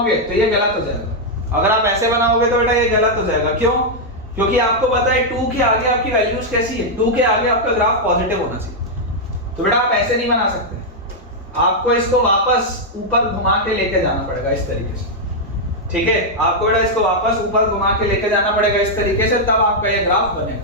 तो ये गलत हो जाएगा, अगर आप ऐसे बनाओगे तो बेटा ये गलत हो जाएगा। क्यों? क्योंकि आपको पता है 2 के आगे आपकी वैल्यूज कैसी है, 2 के आगे आपका ग्राफ पॉजिटिव होना चाहिए। तो बेटा आप ऐसे नहीं बना सकते, आपको इसको वापस ऊपर घुमा के लेके जाना पड़ेगा इस तरीके से, ठीक है, आपको बेटा इसको वापस ऊपर घुमा के लेके जाना पड़ेगा इस तरीके से, तब आपका ये ग्राफ बनेगा।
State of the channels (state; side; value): normal; both; correlation -0.03